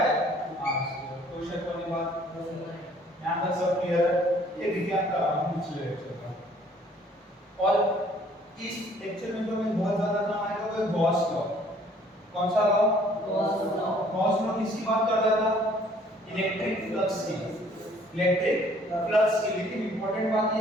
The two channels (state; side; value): normal; both; correlation 0.58